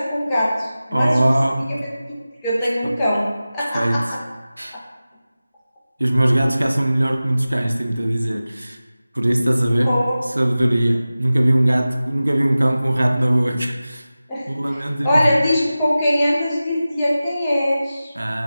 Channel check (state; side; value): inverted; both; correlation -0.96